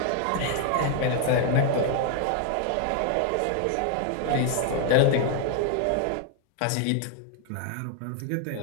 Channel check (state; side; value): different; both; correlation 0.00